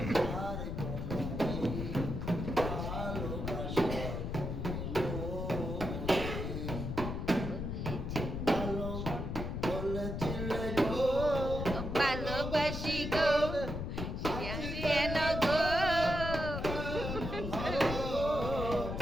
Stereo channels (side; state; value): left; noise; rumble, 4 dB below the sound